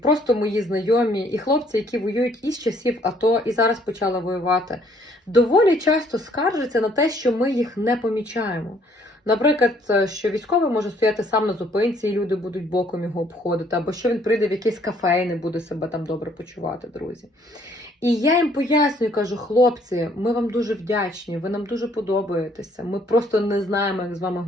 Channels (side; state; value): both; normal; correlation 0.63